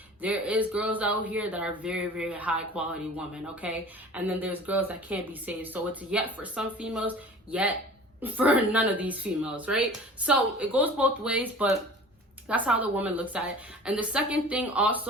there is girls out here that are very, very high quality women, okay? And then there's girls that can't be saved. So it's yet for some females, yet for none of these females, right? So it goes both ways, but that's how the woman looks at it. And the second thing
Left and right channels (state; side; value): normal; both; correlation 0.42